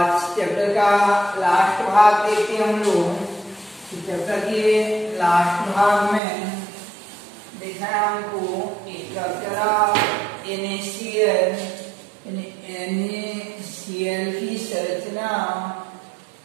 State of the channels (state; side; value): drops out; left; at 6.2 s